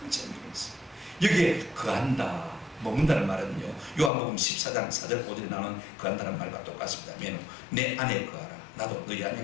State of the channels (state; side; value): drops out; right; at 4.1 s